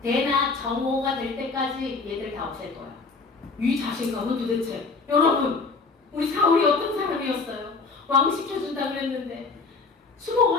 대나 정오가 될 때까지 얘들 다 없앨 거야. 이 자신감은 도대체 여러분 우리 사울이 어떤 사람이었어요? 왕 시켜준다 그랬는데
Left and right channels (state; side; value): quieter; right; 4.2 dB